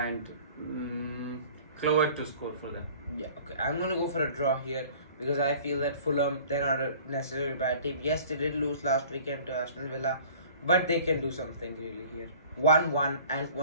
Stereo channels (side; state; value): both; inverted; correlation -0.48